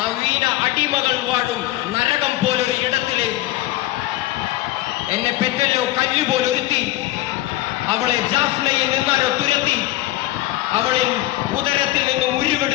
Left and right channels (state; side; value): quieter; right; 16.3 dB